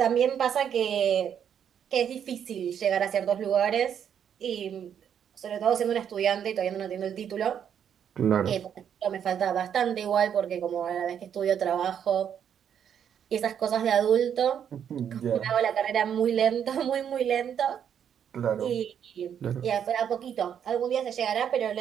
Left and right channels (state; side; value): quieter; left; 8.6 dB